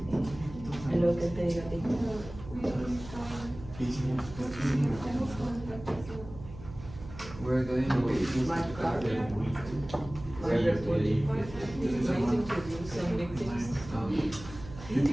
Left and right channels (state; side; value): noise; right; hum, 14 dB below the sound